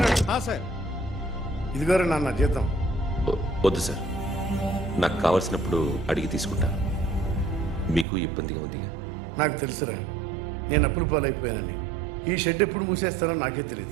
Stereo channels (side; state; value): left; drops out; at 8.1 s